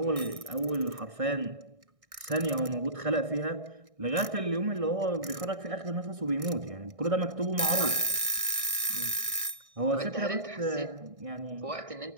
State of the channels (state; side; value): late; left; 1.6 ms